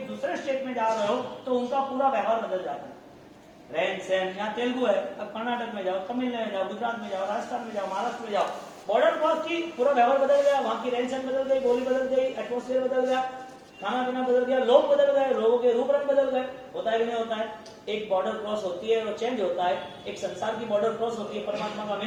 दूसरे स्टेट में जा रहे हो, तो उनका पूरा व्यवहार बदल जाता है। रहन सहन, यहाँ तेलुगु है, अब कर्नाटक में जाओ, तमिलनाडु में जाओ, गुजरात में जाओ, राजस्थान में जाओ, महाराष्ट्र में जाओ, बॉर्डर क्रॉस की पूरा व्यवहार बदल गया, वहां की रहन सहन बदल गई, बोली बदल गई, एटमोस्फेयर बदल गया, खाना पीना बदल गया, लोग बदल गए, लोगों के रूप रंग बदल गए। होता है कि नहीं होता है? एक बॉर्डर क्रॉस होती है और चेंज होता है, एक संसार की बॉर्डर क्रॉस होती है, परमात्मा का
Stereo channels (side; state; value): both; identical; correlation 1.00